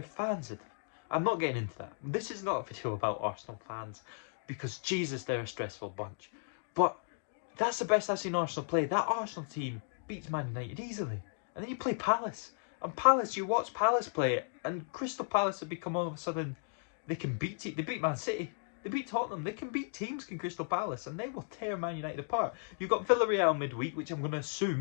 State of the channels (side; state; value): right; silent; digital silence